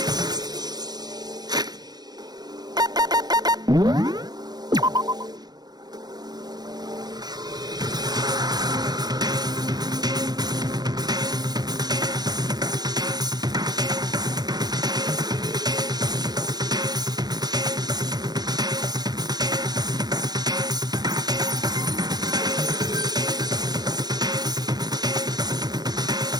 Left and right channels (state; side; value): late; left; 0.19 ms